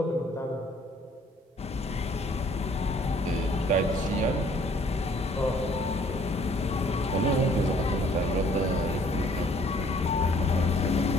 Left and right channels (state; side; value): normal; both; correlation 0.59